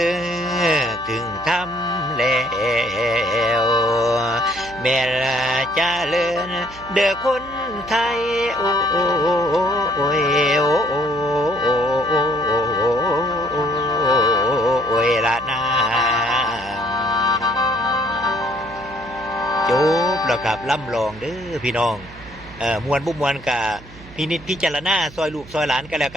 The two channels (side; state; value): right; noise; hum, 19 dB below the sound